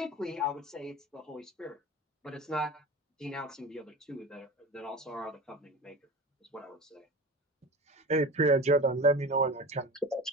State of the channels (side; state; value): both; normal; correlation 0.33